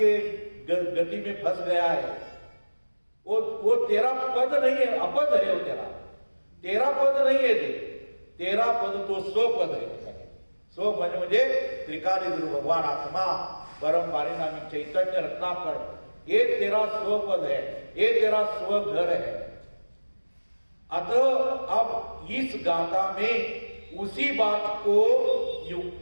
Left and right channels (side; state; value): both; inverted; correlation -1.00